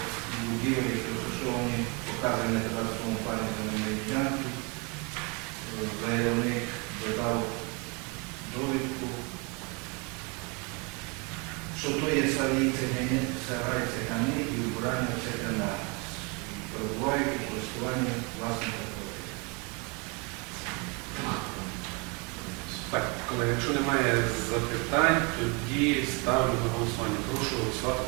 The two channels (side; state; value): left; quieter; 31.1 dB